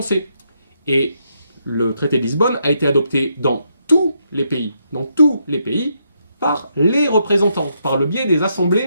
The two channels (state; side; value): inverted; both; correlation -0.78